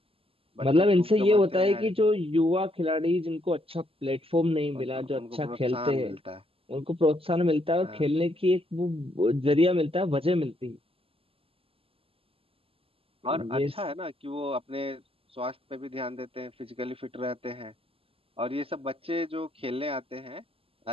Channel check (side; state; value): left; late; 0.27 ms